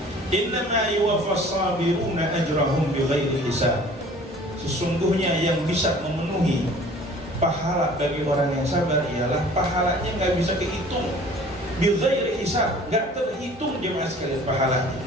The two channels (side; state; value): both; normal; correlation 0.49